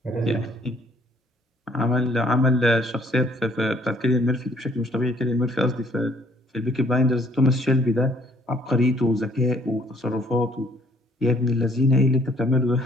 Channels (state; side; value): normal; both; correlation 0.62